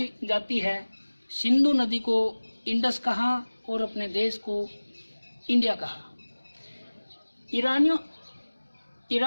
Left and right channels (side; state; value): both; inverted; correlation -1.00